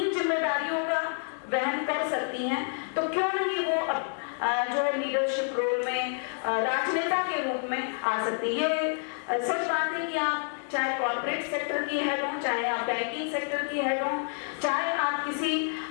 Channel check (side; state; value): right; silent; 59 dB below the other